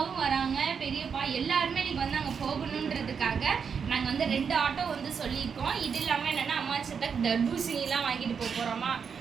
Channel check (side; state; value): left; quieter; 6.4 dB